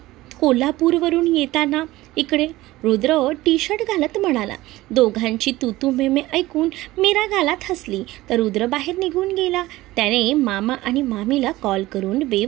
कोल्हापूरवरून येताना इकडे. रुद्र टी शर्ट घालत म्हणाला. दोघांची तू मेमे ऐकून मीरा गालात हसली तर रुद्र बाहेर निघून गेला. त्याने मामा आणि मामीला कॉल करून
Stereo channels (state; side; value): quieter; left; 17.8 dB